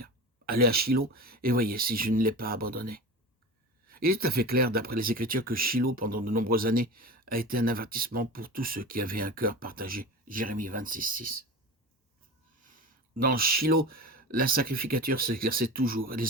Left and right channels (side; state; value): both; normal; correlation 0.31